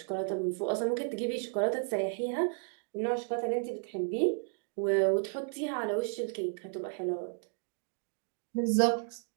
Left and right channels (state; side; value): silent; left; 56 dB below the other